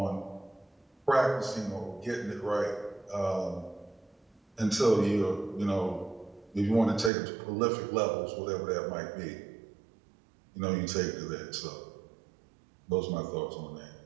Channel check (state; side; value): drops out; left; at 7.1 s